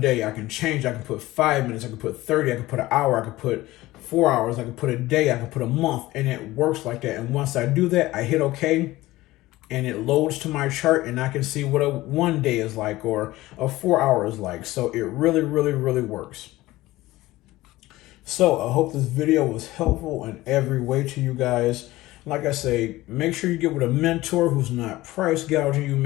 I can change. I can put 5 minutes. I can put 30. I can put an hour. I can put 4 hours. I can put a day. I can put a month. And it works like that. And once I do that, I hit OK. And it loads to my chart. And I can see what a 1 day is like or a 4 hour is like. So it really, really, really works. So I hope this video was helpful in every way to you guys. Like I say, make sure you get with a mentor who's not price gouging you.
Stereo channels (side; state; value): right; quieter; 17.8 dB